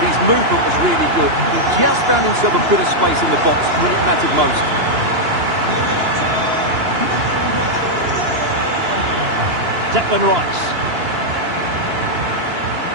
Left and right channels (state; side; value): late; left; 2.9 ms